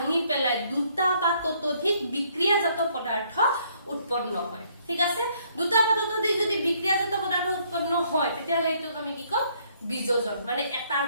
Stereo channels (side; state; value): both; inverted; correlation -0.66